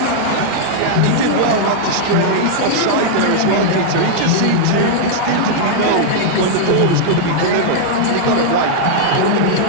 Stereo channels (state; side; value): different; both; correlation -0.01